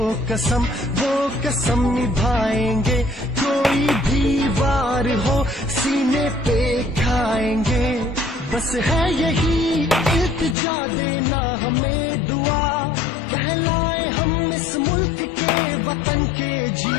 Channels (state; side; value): drops out; right; at 10.6 s